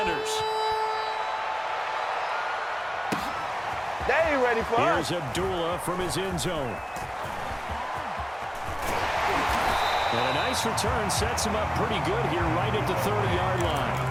They ain't ready for us. Here's Abdullah from his end zone. And a nice return sets him up pretty good here right at the 30-yard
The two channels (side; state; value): both; identical; correlation 1.00